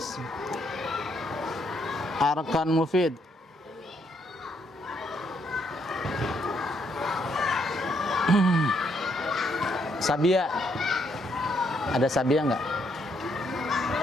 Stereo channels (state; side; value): normal; both; correlation 0.73